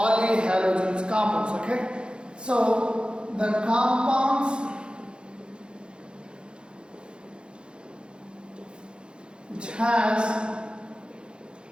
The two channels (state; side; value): late; left; 0.053 ms